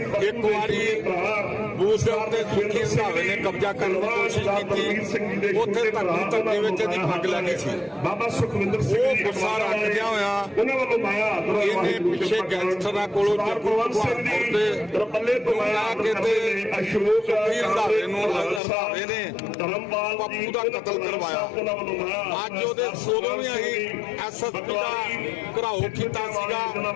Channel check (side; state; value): right; drops out; at 18.6 s